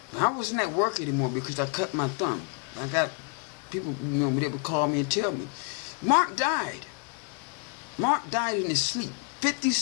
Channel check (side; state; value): right; quieter; 38.6 dB